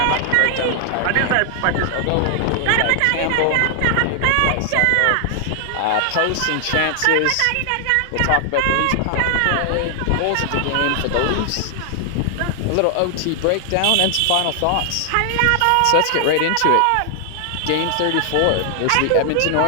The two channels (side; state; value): both; different; correlation 0.00